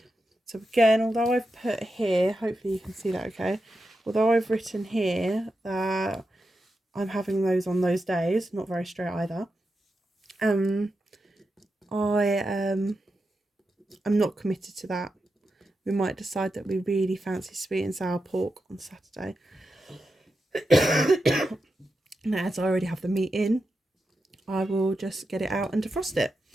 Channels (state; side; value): normal; both; correlation 0.88